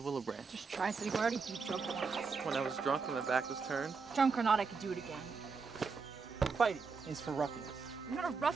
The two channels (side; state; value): left; quieter; 5.0 dB